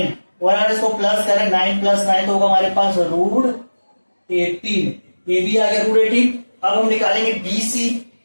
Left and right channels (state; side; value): inverted; both; correlation -1.00